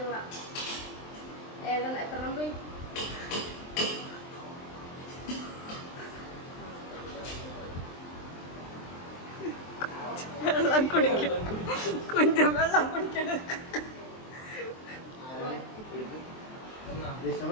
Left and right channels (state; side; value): late; right; 23 ms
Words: എത്രണ്ണം പോയി? വെള്ളം കുടിക്കണം. കുഞ്ചൻ വെള്ളം കുടിക്കണം.